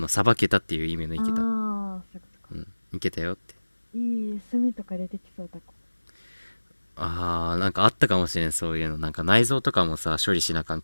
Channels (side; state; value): both; inverted; correlation -1.00